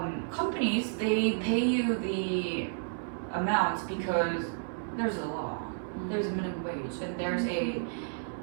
companies, they pay you the amount because there's a law, there's a minimum wage, and there's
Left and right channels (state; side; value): silent; left; 57 dB below the other